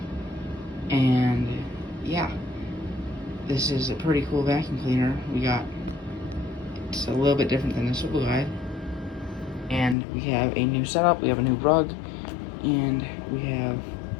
And yeah, this is a pretty cool vacuum cleaner. It's a little bit different than the swivel guide. And we have a new setup, we have a new rug, and we have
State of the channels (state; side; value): drops out; right; at 10.0 s